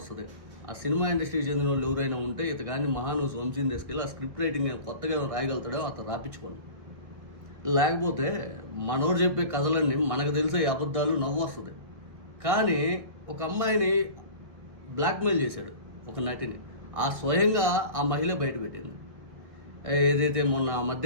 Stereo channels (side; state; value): left; late; 1.7 ms